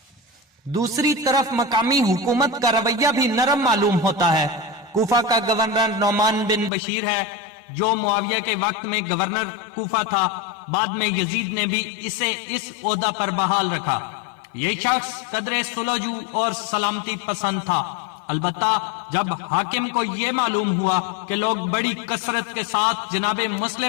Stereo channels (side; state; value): right; drops out; at 6.7 s